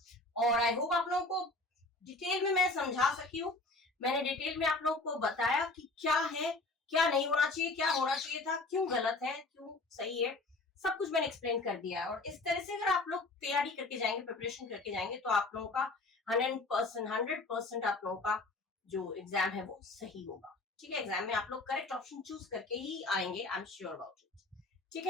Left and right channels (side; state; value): right; quieter; 3.1 dB